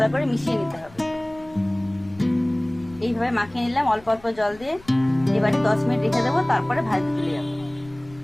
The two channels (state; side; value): noise; left; rumble, 23 dB below the sound